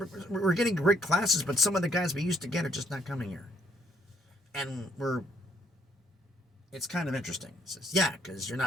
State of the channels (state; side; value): normal; both; correlation 0.65